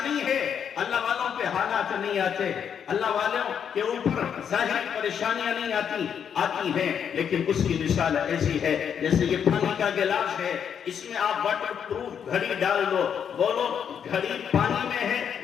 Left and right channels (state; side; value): quieter; right; 7.9 dB